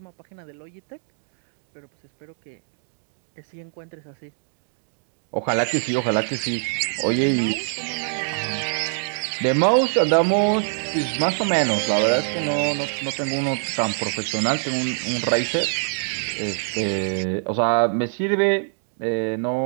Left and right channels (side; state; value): left; silent; digital silence